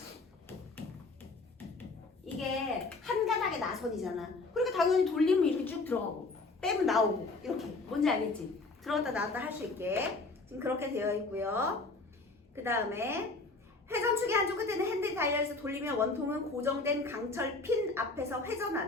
이게 한 가닥의 나선이잖아. 그러니까 당연히 돌리면 이렇게 쭉 들어가고 빼면 나오고 이렇게. 뭔지 알겠지? 들어갔다 나왔다 할 수 있게 지금 그렇게 되어 있고요. 그 다음에 회전축의 한쪽 끝에는 핸들이 달려있어 돌리면 원통은 고정된 강철 핀 앞에서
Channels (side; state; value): right; quieter; 3.5 dB